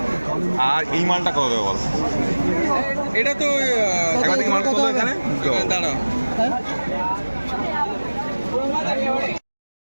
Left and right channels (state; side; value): inverted; both; correlation -1.00